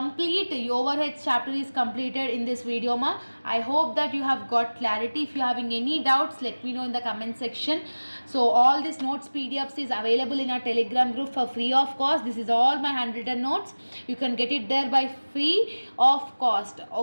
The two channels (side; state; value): both; inverted; correlation -1.00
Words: overheads chapter is completed in this video ma. I hope that you have got clarity. If you are having any doubts, let me know in the comment section. So all these notes PDFs is available in our Telegram group for free of cost. This is all my handwritten notes. You can get it there by free of cost.